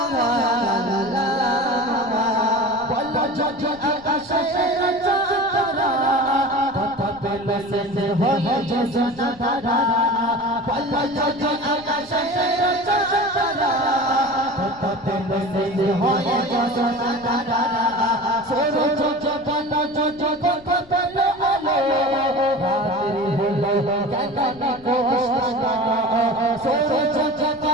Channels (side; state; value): left; noise; rumble, 24 dB below the sound